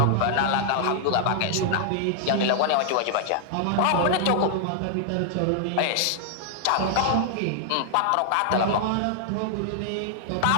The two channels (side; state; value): both; different; correlation -0.01